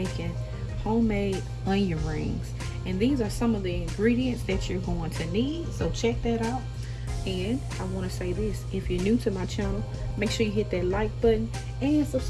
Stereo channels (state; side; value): identical; both; correlation 1.00